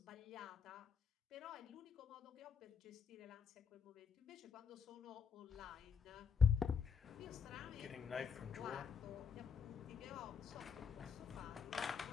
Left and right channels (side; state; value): right; quieter; 6.2 dB